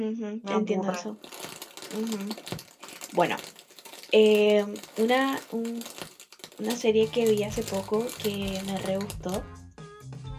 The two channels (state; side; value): identical; both; correlation 1.00